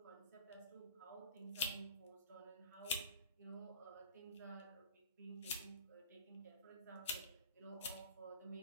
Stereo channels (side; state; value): both; inverted; correlation -0.38